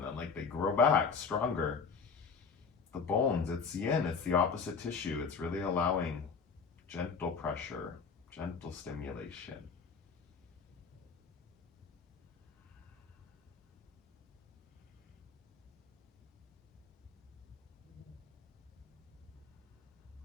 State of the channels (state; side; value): quieter; right; 5.5 dB